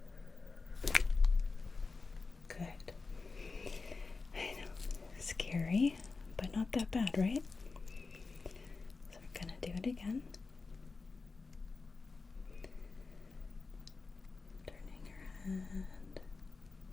Good. I know, scary, but not that bad, right? So we're gonna do it again. Turning your head.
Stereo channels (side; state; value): right; quieter; 4.2 dB